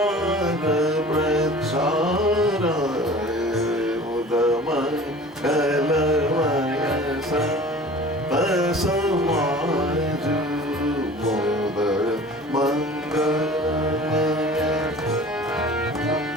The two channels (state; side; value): normal; both; correlation 0.42